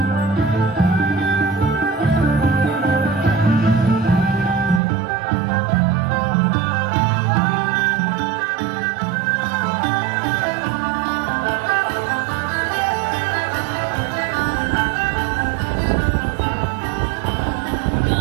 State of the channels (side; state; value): left; drops out; at 4.8 s